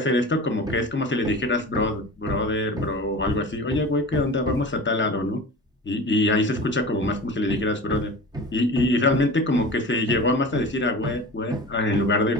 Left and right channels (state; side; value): normal; both; correlation 0.34